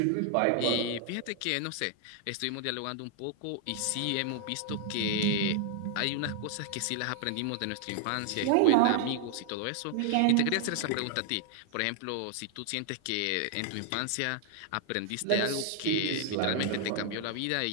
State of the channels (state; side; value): different; both; correlation 0.00